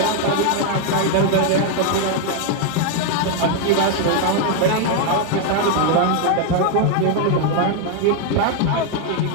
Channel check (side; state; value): both; different; correlation 0.00